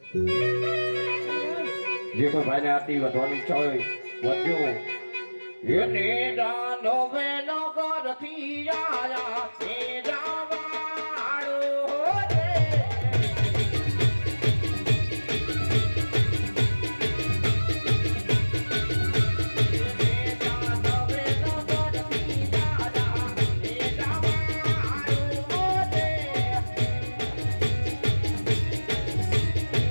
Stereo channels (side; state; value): both; inverted; correlation -1.00